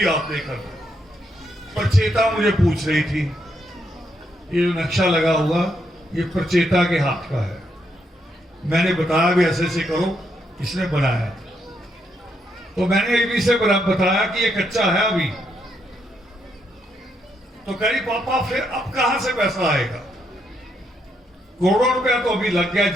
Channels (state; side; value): normal; both; correlation 0.77